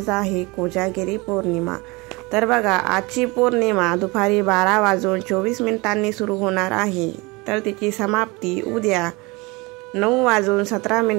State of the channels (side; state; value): left; quieter; 25.1 dB